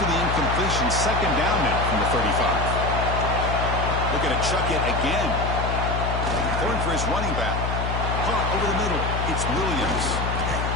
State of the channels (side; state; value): left; noise; hum, 2 dB below the sound